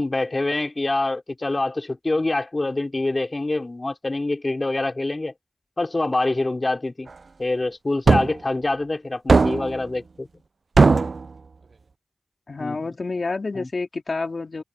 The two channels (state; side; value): normal; both; correlation 0.94